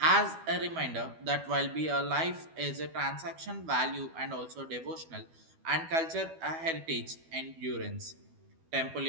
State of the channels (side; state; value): left; late; 12 ms